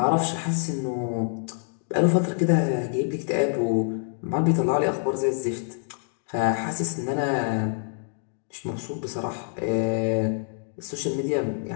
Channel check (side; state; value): right; silent; 61 dB below the other